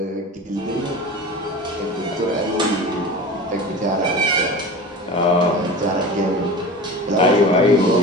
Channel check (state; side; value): normal; both; correlation 0.33